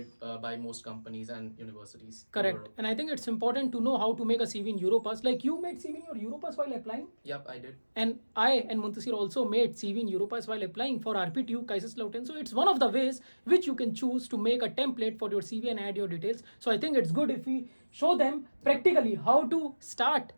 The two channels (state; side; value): inverted; both; correlation -1.00